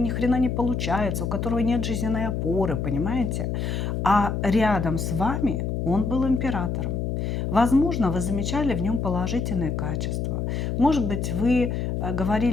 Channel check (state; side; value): noise; left; hum, 1 dB below the sound